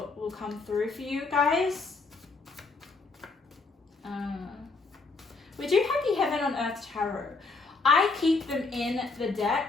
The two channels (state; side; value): quieter; right; 3.9 dB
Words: come through for you guys. We do have the Heaven on Earth Tarot. I keep them in the